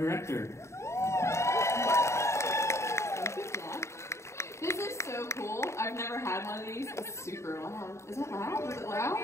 Thank you, Jack. This is so cool. I've never had one of these. It's super loud. Is that loud? Is it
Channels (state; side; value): late; right; 0.14 ms